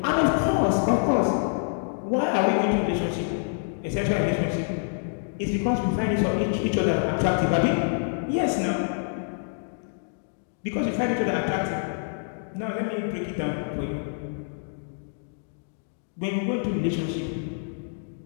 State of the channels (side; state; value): right; silent; digital silence